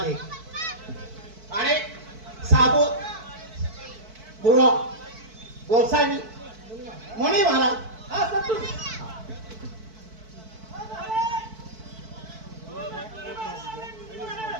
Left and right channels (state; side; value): late; left; 4.5 ms